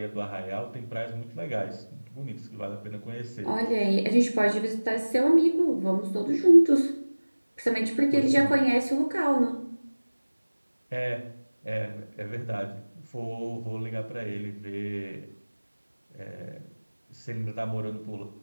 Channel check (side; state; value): both; inverted; correlation -1.00